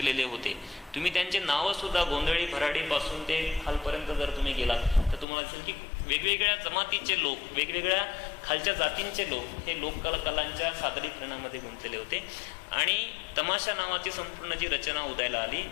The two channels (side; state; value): right; drops out; at 5.2 s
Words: होते. तुम्ही त्यांचे नावं सुद्धा गोंधळी भराडीपासून ते खालपर्यंत जर तुम्ही गेलात तर तुम्हाला दिसेल की वेगवेगळ्या जमातीचे लोक, वेगवेगळ्या खालच्या जातींचे लोक हे लोककलांच्या सादरीकरणामध्ये गुंतलेले होते. आणि तमाशा नावाची संपूर्ण जी रचना उदयाला आली,